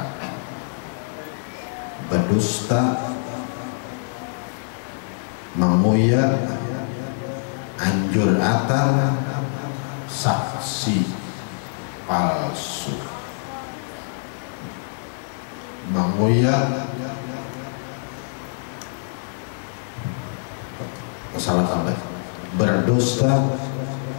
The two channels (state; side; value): silent; right; 61 dB below the other